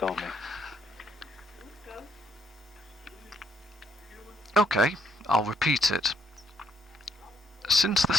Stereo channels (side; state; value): both; normal; correlation 0.72